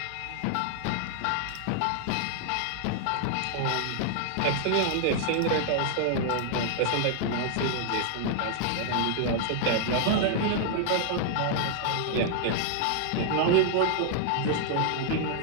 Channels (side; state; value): both; different; correlation -0.01